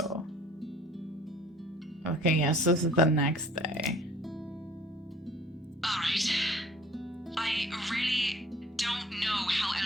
Okay, yes, this is the next day. Alright. I really don't know how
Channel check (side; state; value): both; normal; correlation 0.52